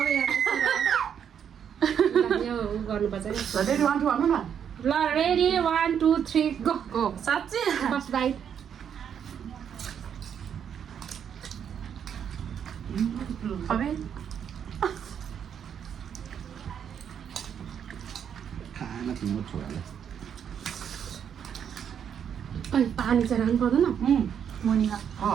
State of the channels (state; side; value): quieter; left; 8.3 dB